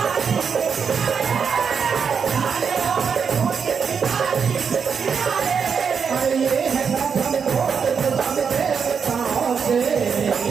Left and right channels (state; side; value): quieter; left; 6.4 dB